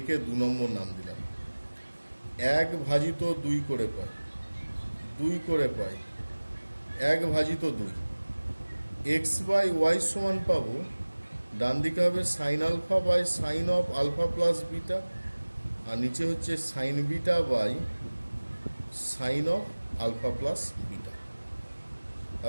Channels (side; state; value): both; inverted; correlation -1.00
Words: 2 নম্বর নাম দিলাম। 1 ভাজিত 2 করে পাই, 2 করে পাই 1 ভাজিত 2। এক্স বাই ওয়াই সমান পাবো, ডান দিকে হবে sine alpha by sine of alpha plus beta, আর নিচে হচ্ছে sine beta by sine of alpha plus beta.